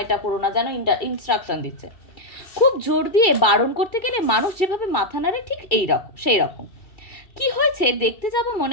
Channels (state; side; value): late; right; 2.3 ms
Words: এটা করো না, যেন ইনস্ট্রাকশন দিচ্ছে। খুব জোর দিয়ে বারণ করতে গেলে মানুষ যেভাবে মাথা নাড়ে ঠিক এই রকম সেই রকম। কি হয়েছে দেখতে যাব